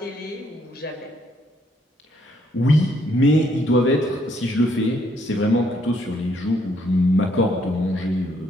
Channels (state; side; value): normal; both; correlation 0.70